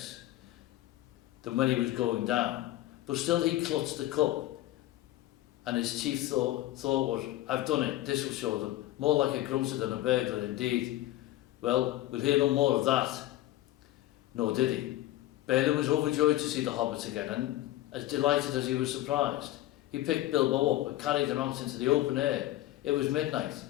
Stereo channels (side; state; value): right; quieter; 15.4 dB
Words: than when he was going down, but still he clutched the cup, and his chief thought was, "I've done it, this will show them, more like a grocer than a burglar indeed. Well, we'll hear no more of that." Nor did he. Balin was overjoyed to see the hobbit again, and as delighted as he was surprised. He picked Bilbo up and carried him out into the open air. It was midnight,